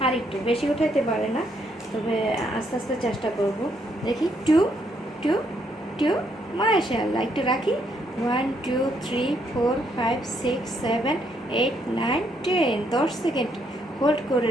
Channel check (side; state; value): both; normal; correlation 0.73